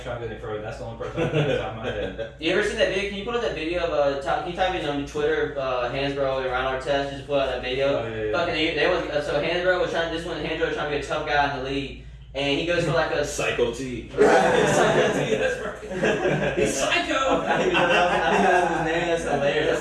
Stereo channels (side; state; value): both; identical; correlation 1.00